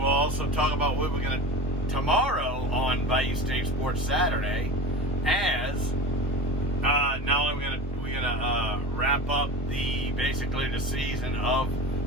also talk about what we're going to tomorrow on Bayou State Sports Saturday, as not only we're gonna wrap up basically the season of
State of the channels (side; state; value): both; normal; correlation 0.32